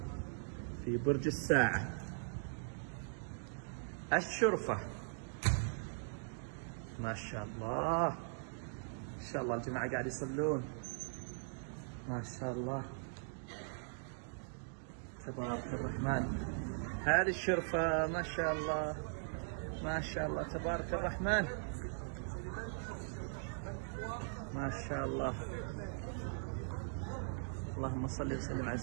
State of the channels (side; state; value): left; silent; digital silence